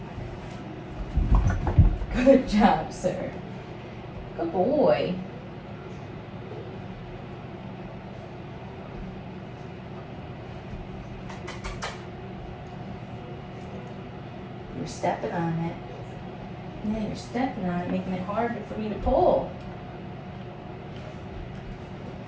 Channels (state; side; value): identical; both; correlation 1.00